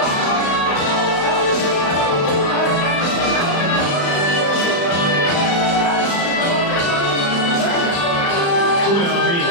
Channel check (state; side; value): late; right; 35 ms